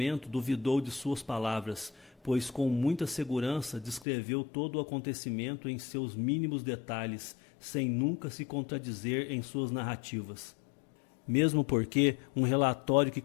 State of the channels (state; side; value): drops out; right; at 4.0 s